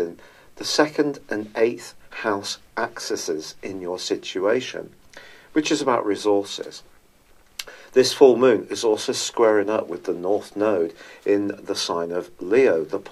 the 2nd and 8th house axes in your situation, which is about resources. This full moon is also squaring up with the North Node in the sign of Leo, the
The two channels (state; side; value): identical; both; correlation 1.00